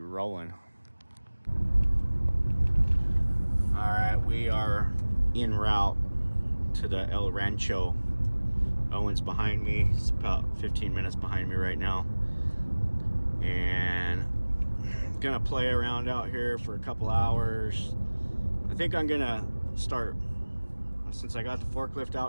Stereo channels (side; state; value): both; inverted; correlation -1.00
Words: All right, we are en route to the El Rancho. Owen's behind me. He's about 15 minutes behind me right now. And I'm gonna play around out here for a couple hours. I think I'm gonna start, since I got the forklift